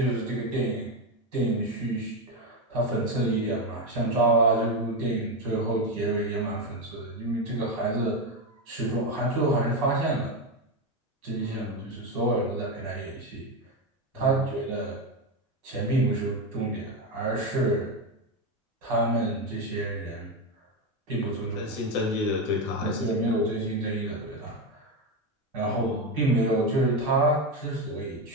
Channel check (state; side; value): normal; both; correlation 0.11